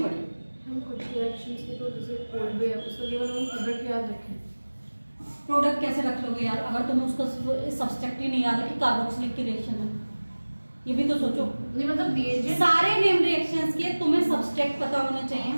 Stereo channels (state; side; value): inverted; both; correlation -1.00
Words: पड़े। हम कुछ रिएक्शंस के तो जैसे कोड भी है, उसका केवल हम प्रोडक्ट याद रखें। प्रोडक्ट कैसे रख लोगे यार, अगर तुम्हें उसका सब्सट्रैक्ट ही नहीं याद है कि कार्बोक्सिलिक की रिएक्शन है, ये भी तो सोचो। नहीं मतलब दिए सारे नेम रिएक्शंस के तुम्हें सब्सट्रैक्ट पता होना चाहिए,